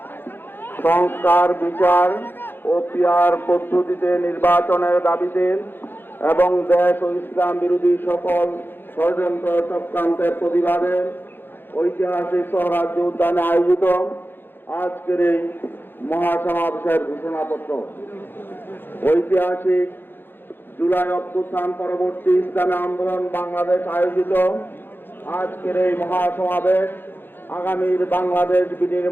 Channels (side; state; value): right; late; 0.10 ms